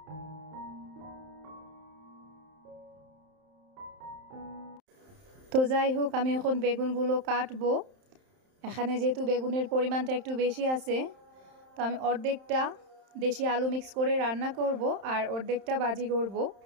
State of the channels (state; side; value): late; left; 31 ms